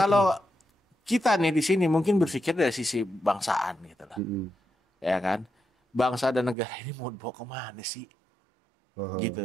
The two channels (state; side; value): drops out; left; at 6.6 s